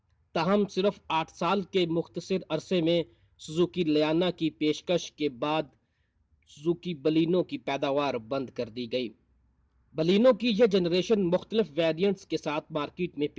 تاہم صرف 8 سال کے مختصر عرصے میں سوزوکی لیانا کی پیشکش کے بعد سوزوکی بلینو کی پیداوار بند کر دی گئی. بلینو کی یہ جنریشن مختلف ویریئنٹس کے ساتھ مارکیٹ میں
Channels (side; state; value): both; identical; correlation 1.00